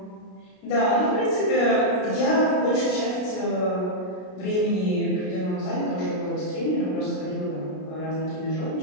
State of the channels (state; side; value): late; right; 33 ms